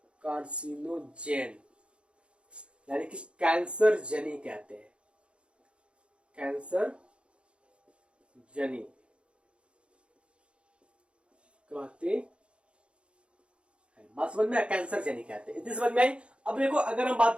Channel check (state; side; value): late; left; 0.058 ms